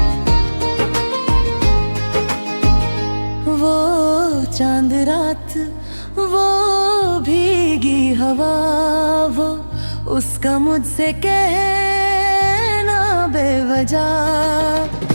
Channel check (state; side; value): inverted; both; correlation -1.00